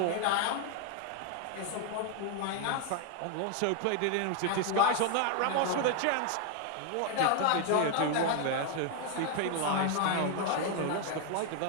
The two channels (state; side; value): different; both; correlation 0.00